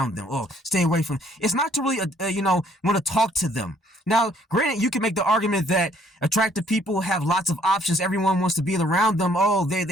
them. Oh, stay away from them. It's not to really, want to talk to them. Now, granted, you can make the argument that attractive people have lots of options. Everyone wants to be around them. Oh,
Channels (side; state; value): both; normal; correlation 0.63